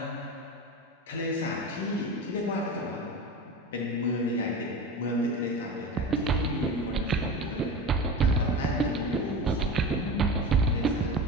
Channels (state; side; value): normal; both; correlation 0.28